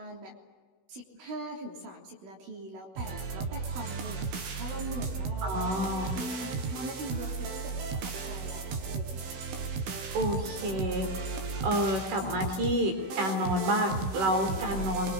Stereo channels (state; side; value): late; left; 16 ms